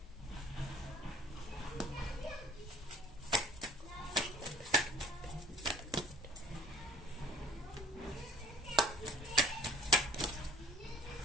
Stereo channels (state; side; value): normal; both; correlation 0.49